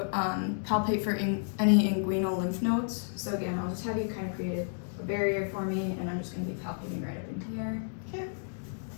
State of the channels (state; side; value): silent; right; digital silence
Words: palpate for any inguinal lymph nodes. So again, I'll just have you kind of create a barrier for me, and I'm just going to be palpating right up in here. Okay.